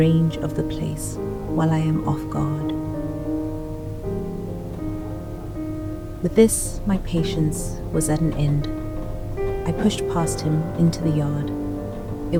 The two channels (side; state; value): both; identical; correlation 1.00